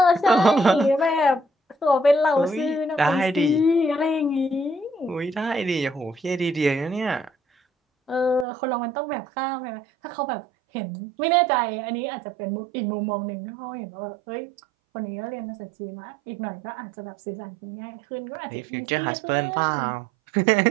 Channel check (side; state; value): left; drops out; at 8.5 s